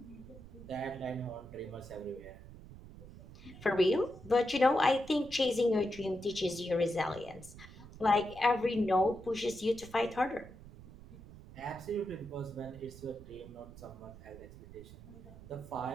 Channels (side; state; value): right; noise; rumble, 17 dB below the sound